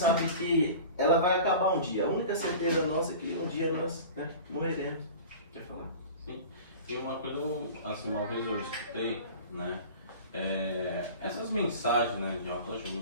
que ela vai acabar um dia. A única certeza nossa é que um dia nós, né, morreremos. Quer falar? Sim. E uma coisa, assim, uma vez eu escutei, né? Essas mensagens, né, de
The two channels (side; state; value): both; inverted; correlation -0.38